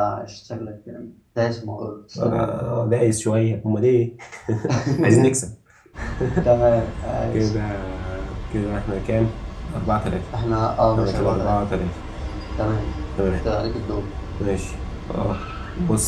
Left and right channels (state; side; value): identical; both; correlation 1.00